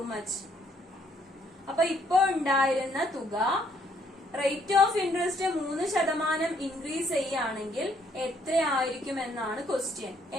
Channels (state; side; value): normal; both; correlation 0.68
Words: much? അപ്പൊ ഇപ്പൊ ഉണ്ടായിരുന്ന തുക റേറ്റ് ഓഫ് ഇൻട്രസ്റ്റ് 3% ഇൻക്രീസ് ചെയ്യുകയാണെങ്കിൽ എത്രയായിരിക്കും എന്നാണ് ക്വസ്റ്റ്യൻ.